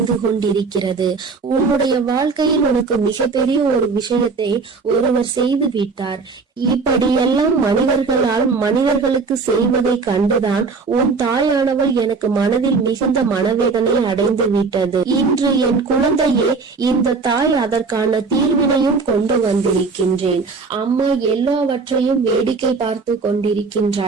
கொண்டிருக்கிறது. உன்னுடைய வாழ்க்கையில் உனக்கு மிகப்பெரிய ஒரு விஷயத்தை ஒருவர் செய்து விட்டார். இப்படியெல்லாம் மனிதர்களுக்கு செய்வதை கண்டுதான் உன் தாயானவள் எனக்கு மனதில் மிகுந்த மனவேதனை அடைந்து விட்டது. இன்று என் குழந்தையே, இந்த தாய் அதற்கான தீர்வினையும் கொண்டு வந்திருக்கின்றேன். அம்மா எல்லாவற்றையும் வேடிக்கை பார்த்து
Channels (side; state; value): left; quieter; 4.5 dB